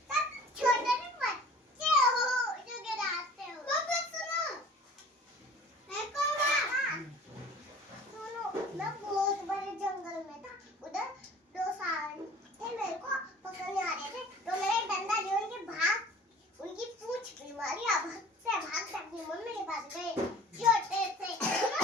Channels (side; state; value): both; normal; correlation 0.47